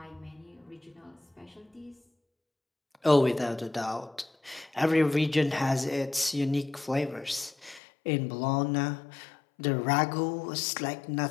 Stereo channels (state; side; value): drops out; right; at 7.8 s